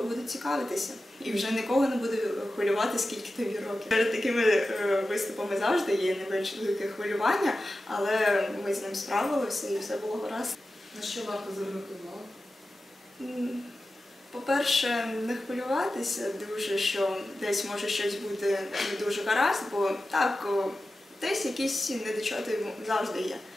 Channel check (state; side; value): normal; both; correlation 0.94